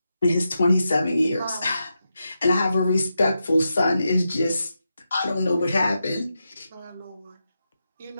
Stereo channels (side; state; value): both; inverted; correlation -0.87